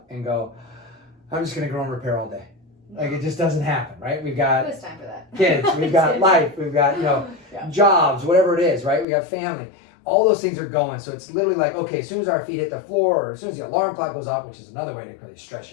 and go, I'm just going to grow and repair all day. Like, it just doesn't happen, right? We've got Who has time for that? kids, we've got life, we've got, jobs, whatever it is, right? We got family. All those things are going. So it's literally like, okay, as soon as our feet hit the floor or as soon as the alarm clock goes off, which is another way to really stress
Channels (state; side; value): drops out; right; at 9.1 s